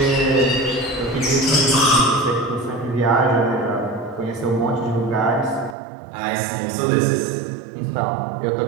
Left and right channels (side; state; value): left; drops out; at 5.8 s